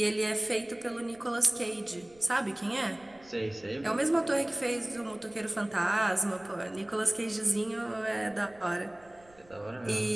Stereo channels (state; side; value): noise; right; rumble, 28 dB below the sound